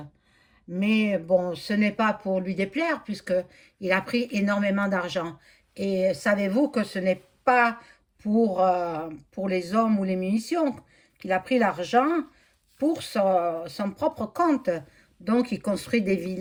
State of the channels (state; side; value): identical; both; correlation 1.00